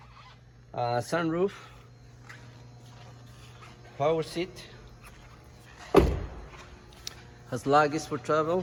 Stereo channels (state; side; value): identical; both; correlation 1.00